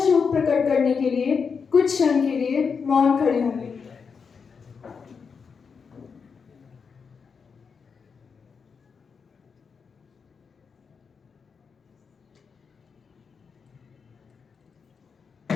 शोक प्रकट करने के लिए कुछ क्षण के लिए मौन खड़े होंगे।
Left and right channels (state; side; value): quieter; right; 5.7 dB